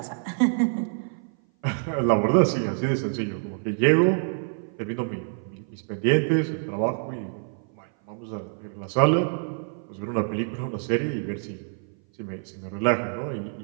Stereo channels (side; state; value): left; silent; 56 dB below the other